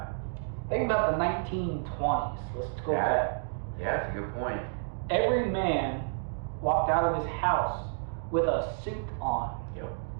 Think about the 1920s. Let's go back. Yeah, that's a good point. Every man walked out of his house with a suit on. Yep.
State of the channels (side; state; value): left; silent; digital silence